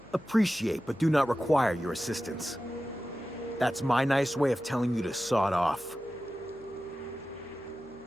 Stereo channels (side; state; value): left; noise; hum, 25 dB below the sound